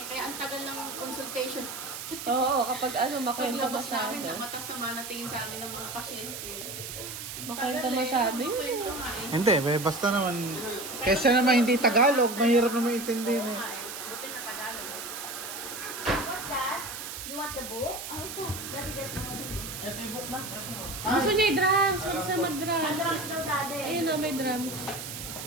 Kaya ang tagal ng consultation. Oo, kapag makwento Paglabas masyado. namin, matasama na tingin sa amin ng mga pasyente. Makwento masyado yun. Kwento nga eh. Hindi, basta naman. Kesa naman hindi Tagalog, mahirap naman intindihin eh. Buti na Tagalog. What's that? You want the book? Oh, daddy get the book. Ito yung book na. Gusto niya i-drums. Gusto siya Ang mag-drums. drums daw, daddy. Ayun o, may drums.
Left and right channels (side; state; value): right; noise; hiss, 8 dB below the sound